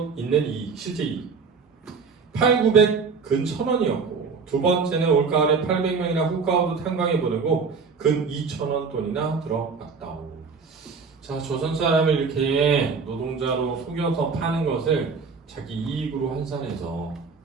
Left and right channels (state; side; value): quieter; left; 5.1 dB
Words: 있는 이익, 실제 이익 8,900 근 1,000원이었고 두 번째는 올가을에 800명이나 훅가우드 탄광에 보내고 근 2,000원 돈이나 들어갔다오. 자, 조선 사람을 이렇게 노동자로 속여서 파는 것을 자기 이익으로 환산해서